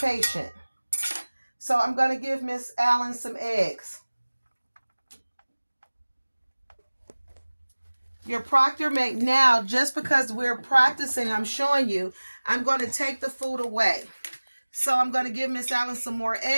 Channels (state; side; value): inverted; both; correlation -1.00